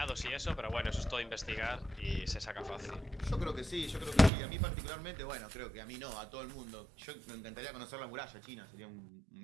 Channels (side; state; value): left; drops out; at 4.3 s